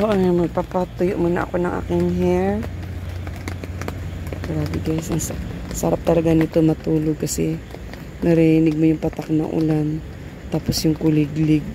ayan, magpapatuyo muna ako ng aking hair. Grabe guys, ang sarap talaga nito matulog kasi narinig mo yung patak ng ulan. Tapos yung kuliglig.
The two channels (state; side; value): identical; both; correlation 1.00